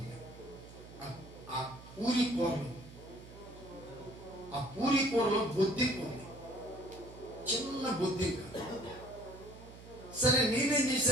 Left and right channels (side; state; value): right; noise; hum, 17 dB below the sound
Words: ఆ పూరి కూరలో బుద్ధి ఉంది, చిన్న బుద్ధి. సరే, నేనేం